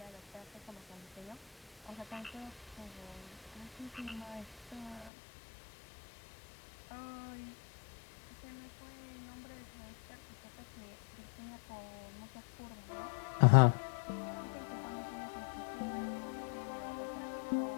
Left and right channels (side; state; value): right; drops out; at 5.1 s